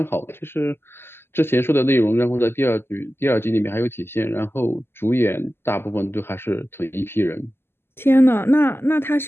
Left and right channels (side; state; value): right; late; 0.11 ms